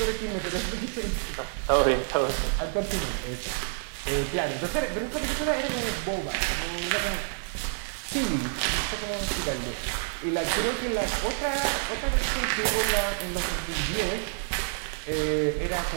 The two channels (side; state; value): left; silent; 59 dB below the other